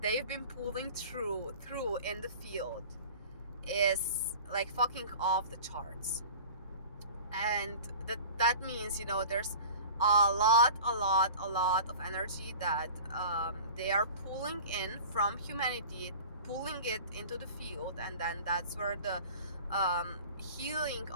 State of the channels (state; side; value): inverted; both; correlation -0.40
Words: they've been pulling through in the field is like fucking off the charts. And that means, there's a lot of energy that they are pulling in from humanity, pulling it into the field, and then that's where the healing